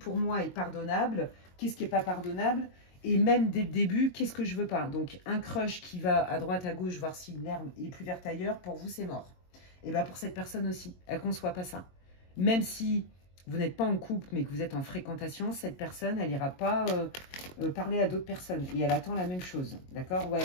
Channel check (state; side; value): late; right; 22 ms